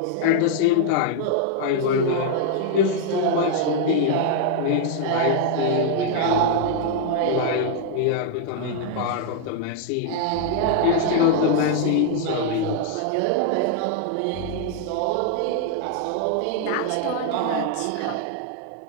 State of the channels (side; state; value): both; different; correlation 0.00